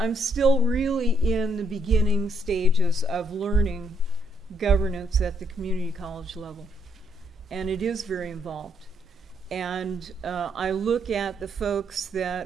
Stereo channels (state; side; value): normal; both; correlation 0.71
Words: still really in the beginning stages of learning governance at the community college level. And it is very involved. And I look at the folks